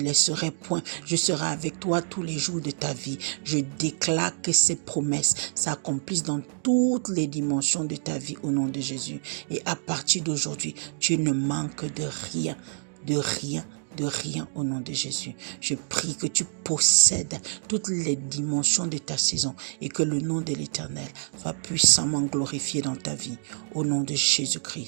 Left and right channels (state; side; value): silent; left; digital silence